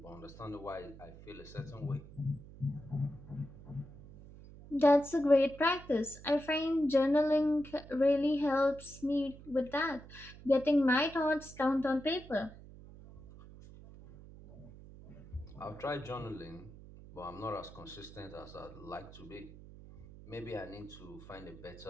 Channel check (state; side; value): noise; right; hum, 18 dB below the sound